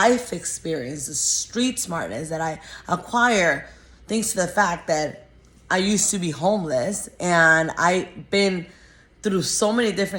experience, the street smartness that I acquire thanks to the fact that I used to be homeless and I've been through so many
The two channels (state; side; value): identical; both; correlation 1.00